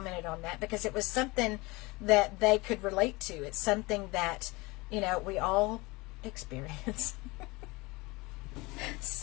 on that because it was something that they could relate to. It's something that, you know, we all experience.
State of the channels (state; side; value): quieter; right; 24.0 dB